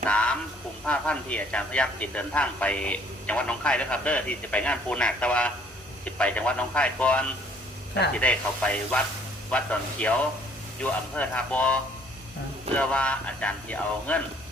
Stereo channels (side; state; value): both; normal; correlation 0.60